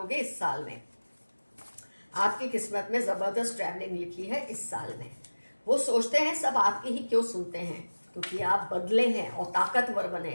इस साल में। आपकी किस्मत में ज़बरदस्त ट्रैवलिंग लिखी है इस साल में। वो सोचते हैं सब आपकी ही क्यों सुनते हैं, क्योंकि आप बदले हैं और ताकतवर बने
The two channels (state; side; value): inverted; both; correlation -1.00